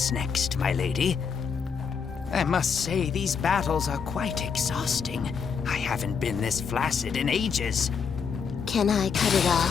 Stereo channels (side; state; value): right; quieter; 6.2 dB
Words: next, my lady. I must say, these battles are quite exhausting. I haven't been this flaccid in ages. Can I cut it